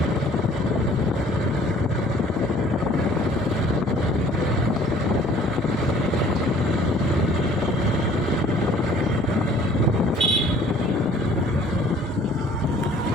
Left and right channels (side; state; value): both; normal; correlation 0.54